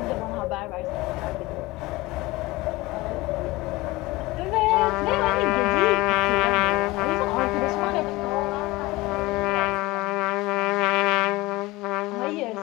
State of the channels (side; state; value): right; quieter; 20.8 dB